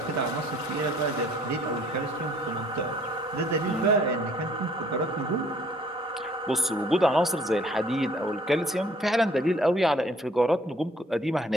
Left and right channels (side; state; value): both; normal; correlation 0.58